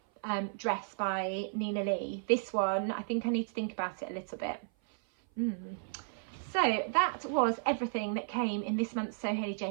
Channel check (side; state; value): left; silent; 55 dB below the other